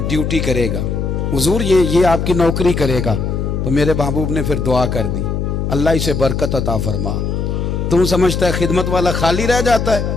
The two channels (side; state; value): left; noise; hum, 1 dB below the sound